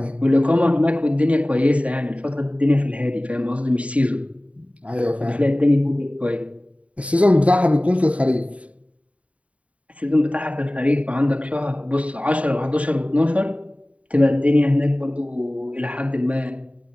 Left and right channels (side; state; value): left; late; 0.065 ms